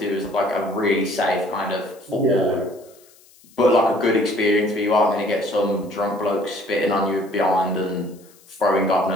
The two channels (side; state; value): left; noise; hiss, 27 dB below the sound